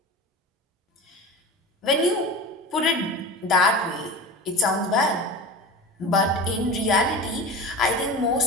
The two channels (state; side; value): normal; both; correlation 0.32